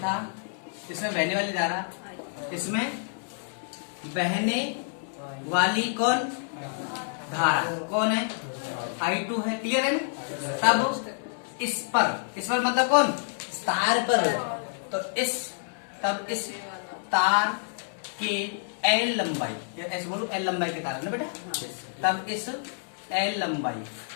इसमें बहने वाली धारा, इसमें बहने वाली कौन धारा कौन है? I2 है, क्लियर है ना। तब इस पर मतलब कौन? तार पर। तो तब इस तार के L लंबाई, ऐसे बोलो L लंबाई के तार है ना बेटा, तब इस L लंबाई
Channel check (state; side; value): silent; right; digital silence